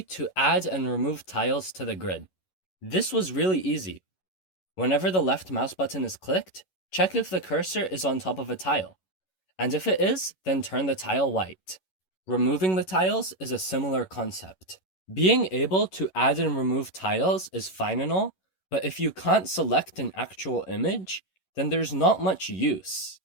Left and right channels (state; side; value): late; right; 11 ms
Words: to add and remove tiles to the grid. This was really easy. Whenever the left mouse button is clicked, check if the cursor is on top of a tile, and if it is, then turn the tile white. Removing the tiles is a similar concept. Being able to add and remove tiles is fine and all, but if you can't select an actual image, then there's not much use.